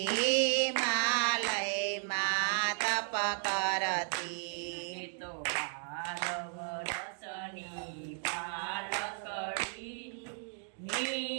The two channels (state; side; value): silent; left; 55 dB below the other